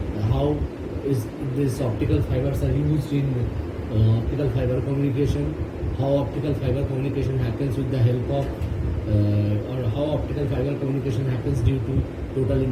how is these optical fibers are used in optical fiber communication, how optical fiber communication happens with the help of or how optical fiber communication happens due to total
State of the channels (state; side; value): identical; both; correlation 1.00